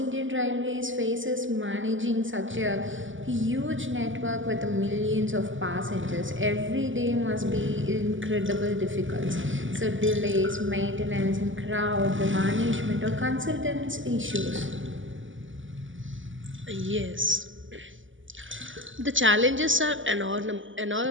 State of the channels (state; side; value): late; left; 0.57 ms